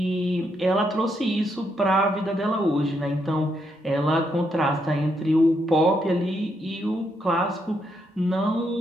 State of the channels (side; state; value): both; normal; correlation 0.78